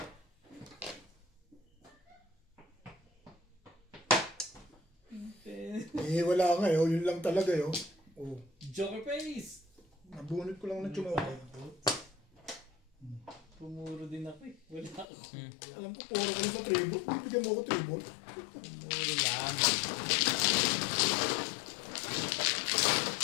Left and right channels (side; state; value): right; drops out; at 15.1 s